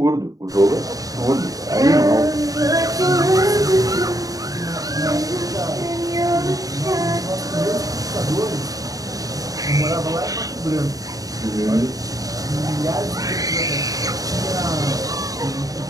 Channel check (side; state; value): left; late; 0.17 ms